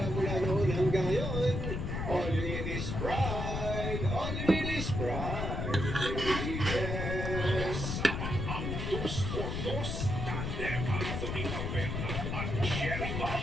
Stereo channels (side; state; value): left; noise; rumble, 2 dB below the sound